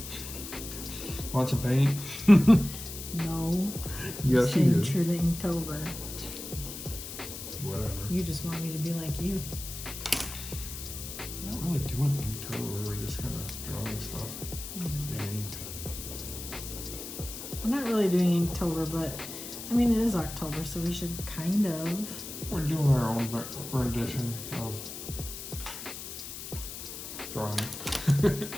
Want some paint? No. Yes, you Staying do. true to Inktober. Whatever. You just want me to be like you. We're not really doing Inktober. We're just kind of drawing stuff. And We're not really doing Inktober, but I mean, it is October, so we should kind of. we're doing our own rendition of drawing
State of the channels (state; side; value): noise; left; hiss, 9 dB below the sound